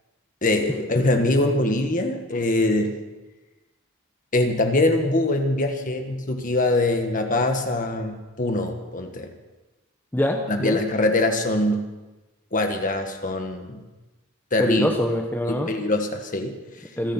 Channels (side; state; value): both; normal; correlation 0.41